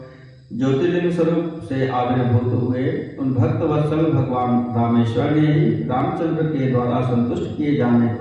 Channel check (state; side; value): identical; both; correlation 1.00